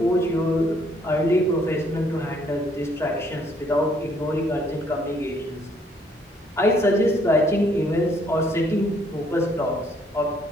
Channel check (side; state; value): both; normal; correlation 0.66